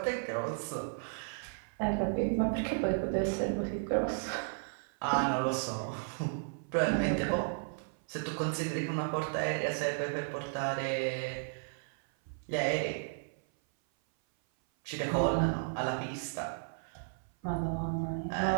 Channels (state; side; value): silent; left; 55 dB below the other